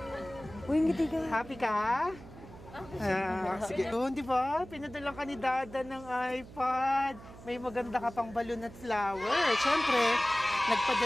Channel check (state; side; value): noise; right; hum, 17 dB below the sound